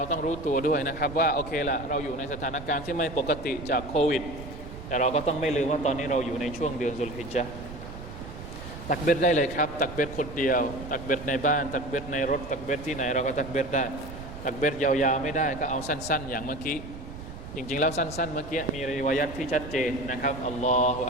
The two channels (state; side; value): noise; right; rumble, 12 dB below the sound